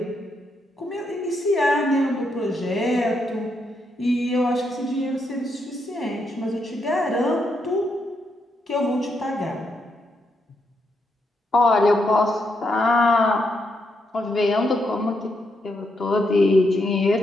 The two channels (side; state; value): both; normal; correlation 0.80